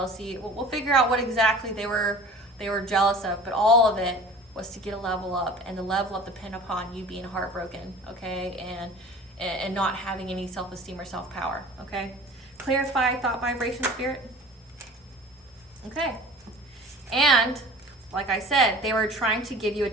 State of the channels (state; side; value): normal; both; correlation 0.42